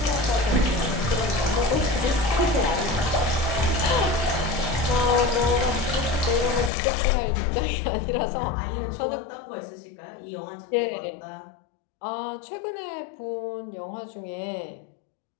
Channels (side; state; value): right; drops out; at 6.7 s